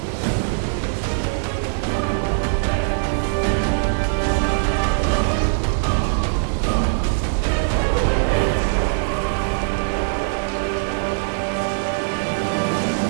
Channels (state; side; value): silent; left; digital silence